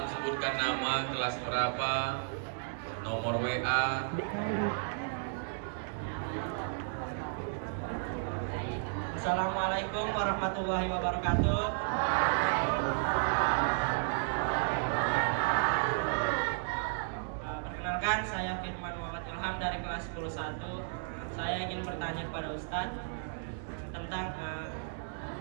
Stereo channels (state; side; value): silent; left; digital silence